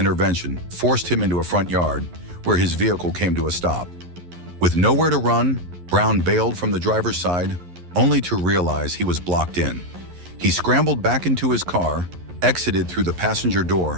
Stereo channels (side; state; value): left; late; 11 ms